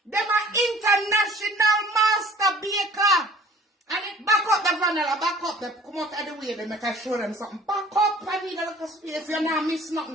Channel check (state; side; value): normal; both; correlation 0.50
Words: Them are international master baker. And it back up the vanilla, back up them. Come out of the way, they make I show them something. Back up, I need a little space. You not miss